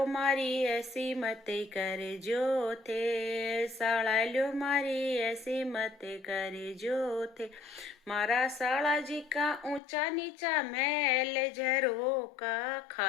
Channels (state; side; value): drops out; right; at 9.8 s